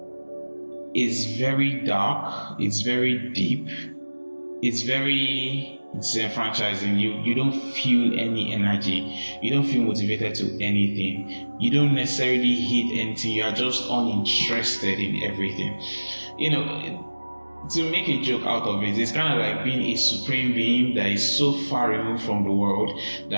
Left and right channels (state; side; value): inverted; both; correlation -1.00